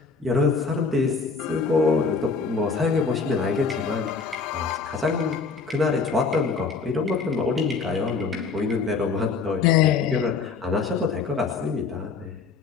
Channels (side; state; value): right; quieter; 4.8 dB